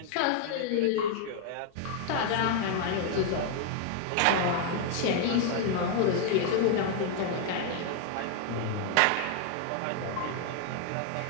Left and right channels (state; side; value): different; both; correlation 0.00